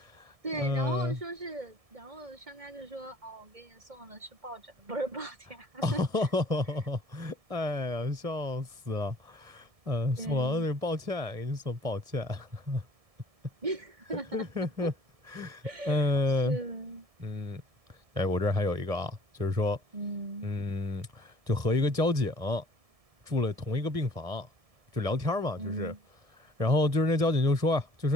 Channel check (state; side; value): late; left; 1.7 ms